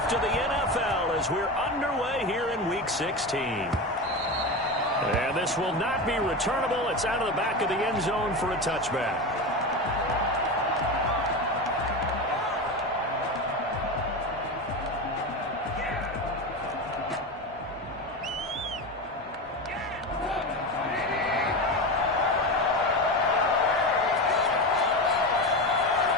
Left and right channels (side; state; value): both; normal; correlation 0.21